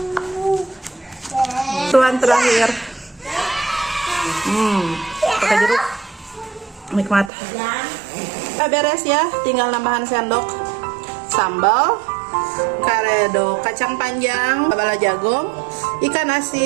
Tuan terakhir, pakai jeruk. Nikmat. Udah beres ya, tinggal nambahan sendok sambal, karedok kacang panjang, bala jagong, ikan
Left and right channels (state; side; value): drops out; left; at 7.3 s